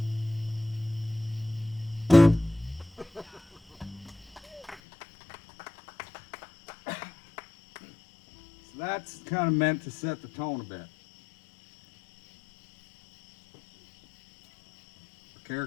That's kind of meant to set the tone a bit. The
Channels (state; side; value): drops out; right; at 4.8 s